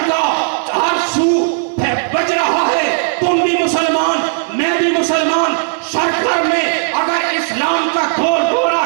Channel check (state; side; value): silent; left; 62 dB below the other